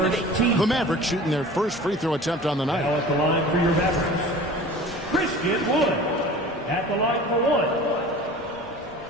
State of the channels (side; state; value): both; normal; correlation 0.41